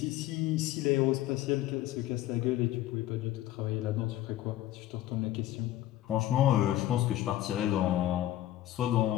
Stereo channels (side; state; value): right; quieter; 14.0 dB